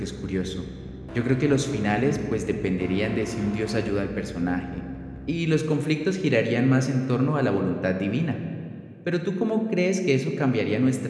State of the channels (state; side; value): identical; both; correlation 1.00